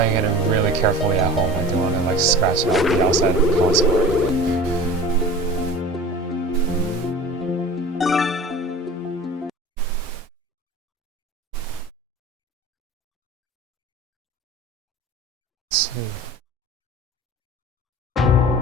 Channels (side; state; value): both; normal; correlation 0.37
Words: it really carefully at home. I don't want to like scratch out the outside of the console or anything. Let's see.